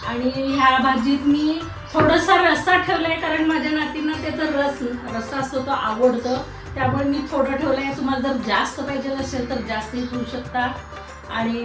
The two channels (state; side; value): identical; both; correlation 1.00